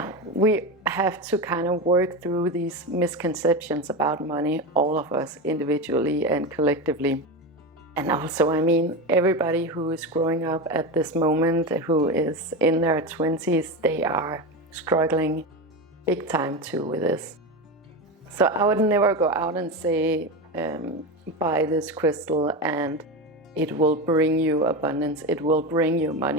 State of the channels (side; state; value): both; normal; correlation 0.19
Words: we have to kind of work through these misconceptions about money, all of us individually and collectively. And also, I mean, everybody who is growing up at this moment, who is in their 20s, they are struggling big time too with this. So I would never go out and say, buy this crystal and it will bring you abundance, it will bring you